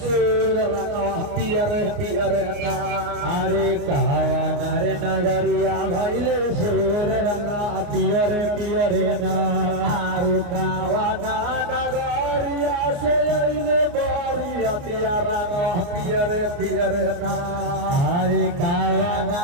सुर रंगा पियरे पियरे ना अरे कावाना रे नगरिया भइले सुर रंगा पियरे पियरे ना अरे कावाना नगरिया से अइले बारियतिया रंगा पियरे पियरे ना अरे कावाना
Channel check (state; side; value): late; left; 29 ms